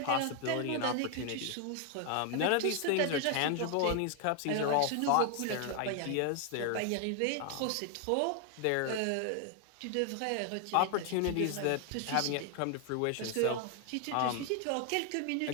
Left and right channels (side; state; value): both; different; correlation 0.00